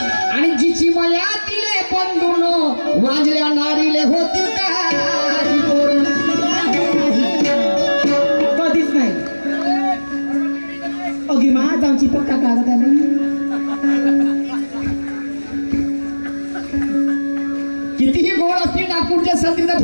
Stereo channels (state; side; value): inverted; both; correlation -1.00